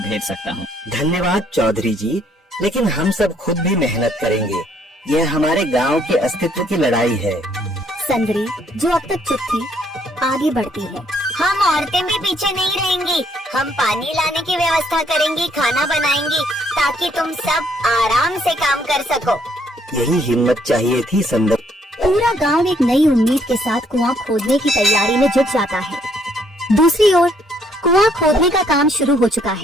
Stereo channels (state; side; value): normal; both; correlation 0.68